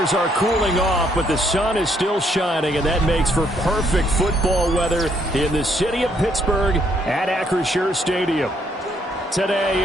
are cooling off, but the sun is still shining, and that makes for perfect football weather in the city of Pittsburgh at Acrisure Stadium. Today,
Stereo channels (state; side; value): normal; both; correlation 0.70